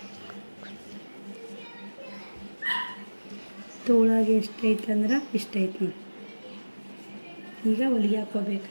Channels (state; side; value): inverted; both; correlation -1.00